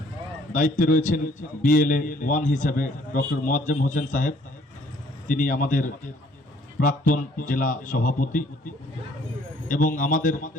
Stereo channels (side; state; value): both; normal; correlation 0.60